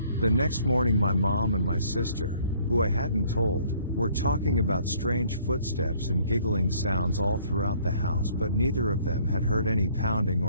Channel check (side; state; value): both; inverted; correlation -0.61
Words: The next morning my mom and my sister, who I hadn't told, were talking about strange footsteps and giggling sounds all throughout the house, but neither of them had heard any pounding